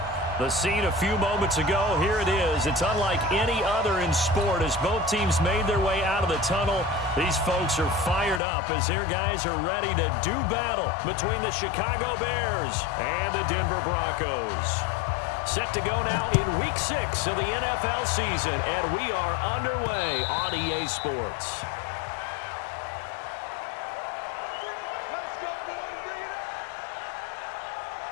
The scene a few moments ago, here it is. It's unlike any other in sport as both teams made their way out of the tunnel. These folks are fired up as their guys are ready to do battle between the Chicago Bears and the Denver Broncos. Set to go now in Week 6 of the NFL season, and we are underway on EA Sports.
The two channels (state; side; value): drops out; right; at 8.4 s